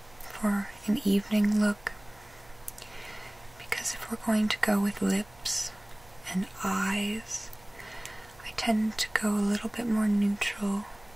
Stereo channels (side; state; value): right; noise; hum, 26 dB below the sound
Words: for an evening look, because if we're going to go with lips and eyes, I tend to go a little bit more neutral